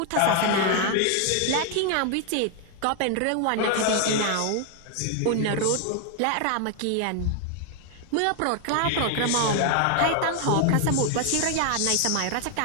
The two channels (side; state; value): both; different; correlation 0.00